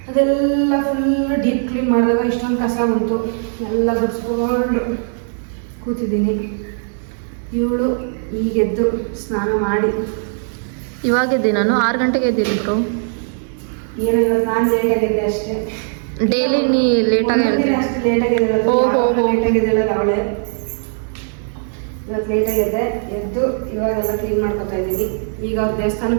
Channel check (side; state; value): left; silent; 67 dB below the other